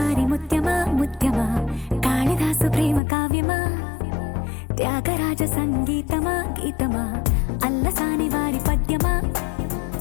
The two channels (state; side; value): drops out; right; at 3.0 s